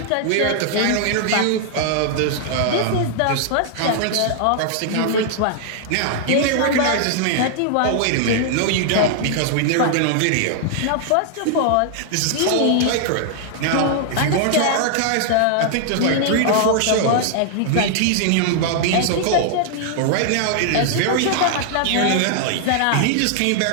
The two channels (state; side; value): different; both; correlation 0.00